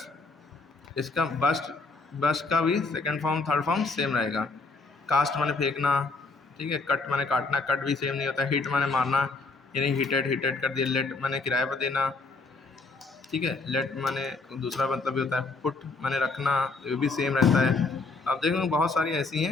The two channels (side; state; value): right; quieter; 3.8 dB